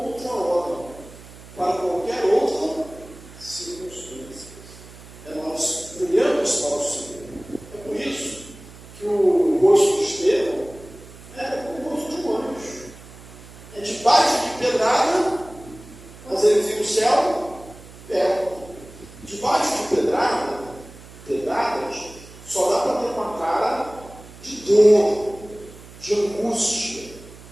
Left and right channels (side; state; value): right; noise; hum, 19 dB below the sound